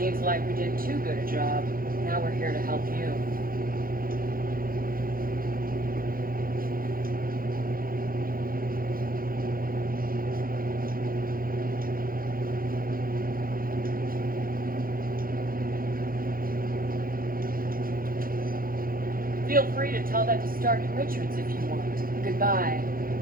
like we did too good a job. Now we're here to help you. Feel free to tell that to Stark and Richards if you want. Goodbye.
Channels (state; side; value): late; left; 0.42 ms